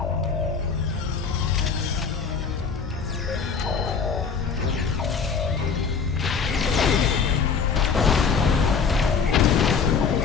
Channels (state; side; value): quieter; right; 5.8 dB